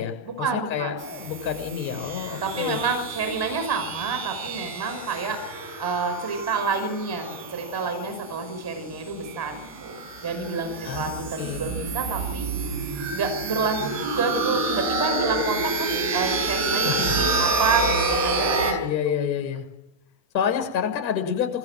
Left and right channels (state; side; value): late; right; 1.1 ms